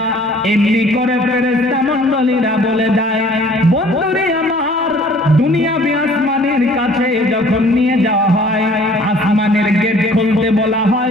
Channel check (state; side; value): normal; both; correlation 0.53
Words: এমনি করে ফেরেশতা মণ্ডলীরা বলে দেয়। বন্ধুরে আমার, দুনিয়াবি আসমানের কাছে যখন নিয়ে যাওয়া হয়, আসমানের গেট খুলতে বলা